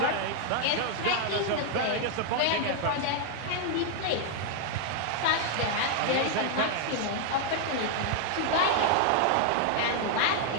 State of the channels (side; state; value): both; different; correlation 0.00